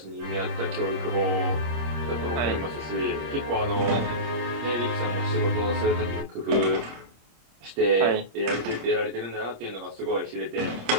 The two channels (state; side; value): late; left; 26 ms